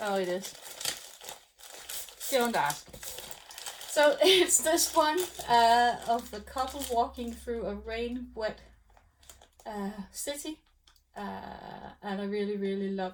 Oh, it is. Don't ask. So it's this one of the couple walking through a rain-wet city, and I really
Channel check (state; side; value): identical; both; correlation 1.00